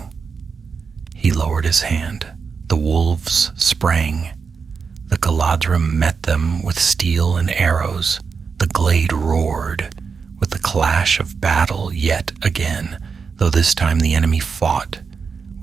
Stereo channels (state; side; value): quieter; left; 5.5 dB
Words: He lowered his hand. The wolves sprang. The Galadrim met them with steel and arrows. The glade roared with the clash of battle yet again, though this time the enemy fought